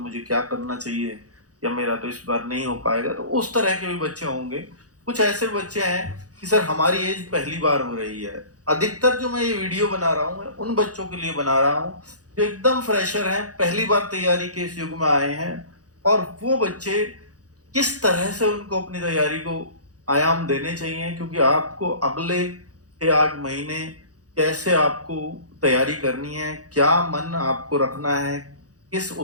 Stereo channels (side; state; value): left; late; 0.67 ms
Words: क्या करना चाहिए, या मेरा तो इस बार नहीं हो पाएगा, तो उस तरह के भी बच्चे होंगे। कुछ ऐसे बच्चे हैं कि सर हमारी एज पहली बार हो रही है। अधिकतर जो मैं ये वीडियो बना रहा हूँ मैं उन बच्चों के लिए बना रहा हूँ जो एकदम फ्रेशर हैं, पहली बार तैयारी के इस युग में आए हैं। और वो बच्चे किस तरह से उनको अपनी तैयारी को आयाम देने चाहिए, क्योंकि आपको अगले 6-8 महीने कैसे आपको तैयारी करनी है, क्या मन आपको रखना है, किस